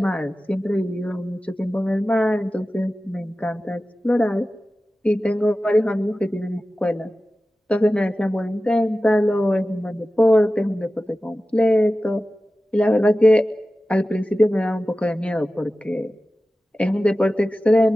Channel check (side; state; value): both; normal; correlation 0.95